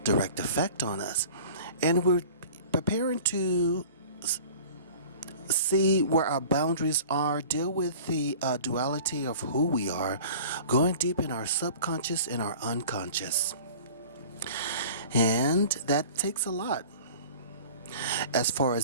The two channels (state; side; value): inverted; both; correlation -0.43